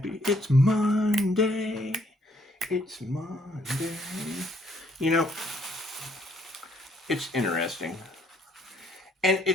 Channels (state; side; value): normal; both; correlation 0.67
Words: It's Monday. It's Monday. You know, it's interesting. And